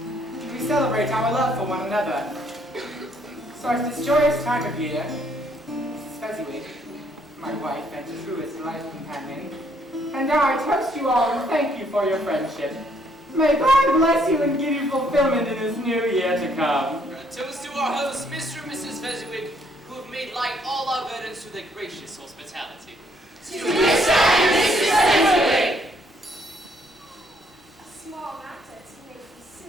celebrate our love for one another. So at this joyous time of year, Mrs. Fezziwig, my wife and truest life companion, and I toast you all and thank you for your friendship. May God bless you and give you fulfillment in this new year to come. Toast to our hosts, Mr. and Mrs. Fezziwig, who have made light all our burdens through their gracious hospitality. To Mr. and Mrs. Fezziwig! A small matter to make these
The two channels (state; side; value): normal; both; correlation 0.68